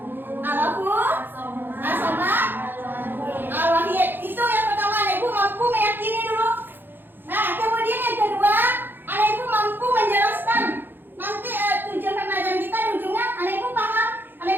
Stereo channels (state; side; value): late; left; 0.098 ms